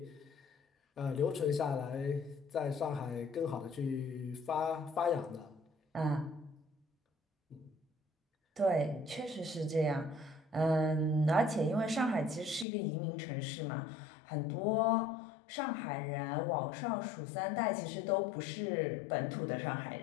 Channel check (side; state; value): right; drops out; at 12.7 s